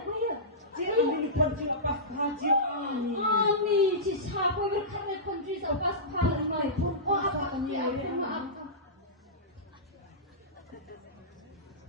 kepia. Jika ni pun jika pas haji ami. Ami, cisha, kue berkarya country so pas pahal mai. Oh, apa kan ya? Maaf.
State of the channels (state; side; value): normal; both; correlation -0.17